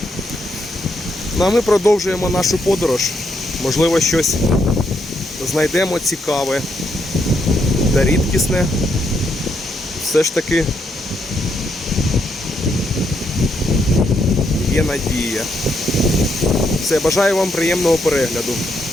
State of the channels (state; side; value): normal; both; correlation 0.77